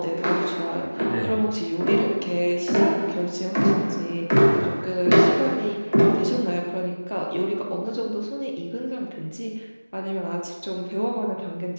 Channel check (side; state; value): both; inverted; correlation -1.00